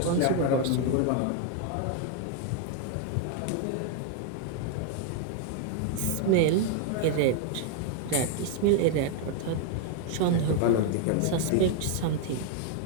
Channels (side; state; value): both; different; correlation 0.00